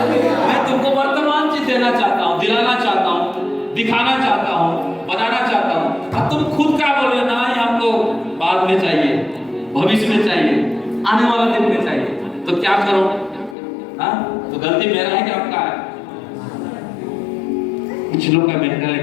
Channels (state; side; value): drops out; right; at 13.6 s